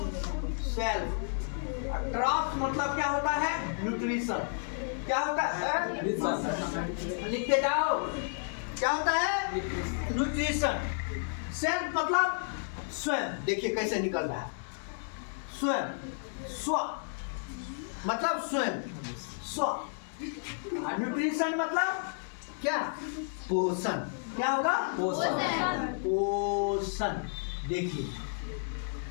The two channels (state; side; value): silent; right; 57 dB below the other